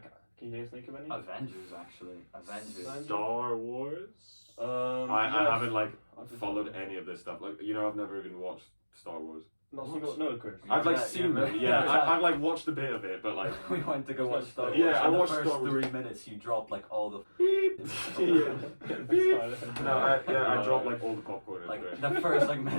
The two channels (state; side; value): inverted; both; correlation -1.00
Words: can you guys think of any? Avengers, actually. Avengers. Star Wars. I yes. haven't like I've just- followed any of this stuff. Like I've never even watched Star Wars. Not single. No, Chris. I've like Yeah, seen yeah, them. yeah. Yeah, I've like watched a bit of it, but like We went to go watch Star Wars. Yeah, I and the watched first Star Wars. 3 minutes you dropped like all the I dropped like all the popcorn. in like there. the first like